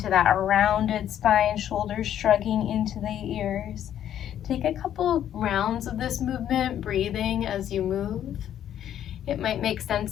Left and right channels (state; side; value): quieter; right; 10.6 dB